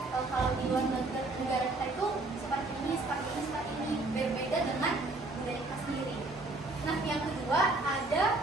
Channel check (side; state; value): left; quieter; 3.0 dB